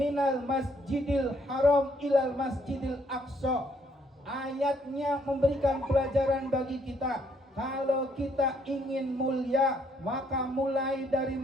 masjidil haram ilal masjidil aqsa. Ayatnya memberikan pelajaran bagi kita. Kalau kita ingin mulia, maka mulai dari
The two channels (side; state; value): both; normal; correlation 0.69